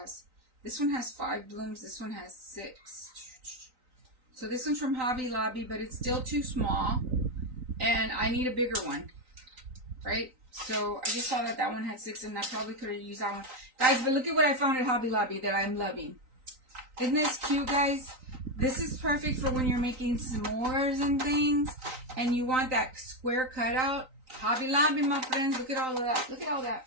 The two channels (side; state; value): left; late; 3.9 ms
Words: this one has 5 blooms, this one has 6. So this one's from Hobby Lobby, but it's still too small, and I need a bigger one, right? So I just saw that that one had 6, and I probably could have used that one. Guys, but look at what I found at Hobby Lobby that I'm loving. Isn't this cute, guys? This is perfect for when you're making s'mores and things, and you want that square cutout. Hobby Lobby, my friends. Look at all of that. Look at all that.